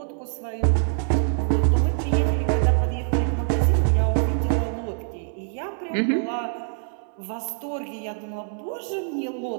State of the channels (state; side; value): silent; left; 62 dB below the other